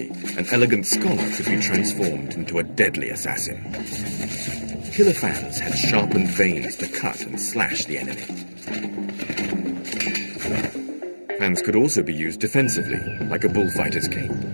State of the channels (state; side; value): inverted; both; correlation -1.00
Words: an elegant scholar could be transformed into a deadly assassin. Killer fans had sharpened veins to cut and slash the enemy. Fans could also be used defensively, like a bullfighter's cape.